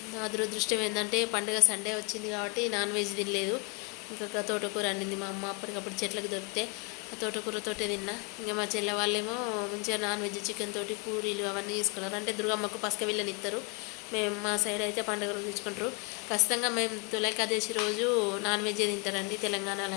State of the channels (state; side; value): quieter; right; 32.2 dB